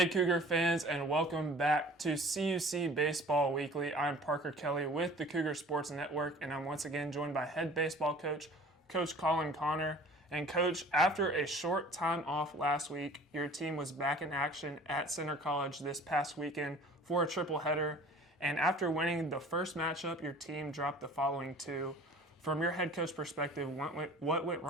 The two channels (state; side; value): normal; both; correlation 0.47